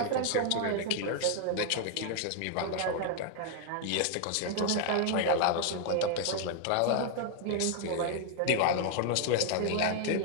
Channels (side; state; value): both; different; correlation 0.00